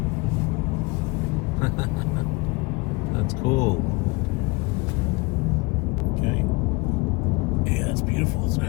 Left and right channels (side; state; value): right; quieter; 26.1 dB